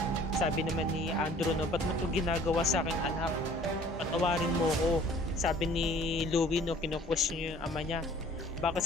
Sabi naman ni Andrew, no, ba't mo ito ginagawa sa aking anak? Patawarin mo ko. Sabi ni Louie, no, kinu-question niya yung ama niya. Baka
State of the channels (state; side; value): normal; both; correlation 0.53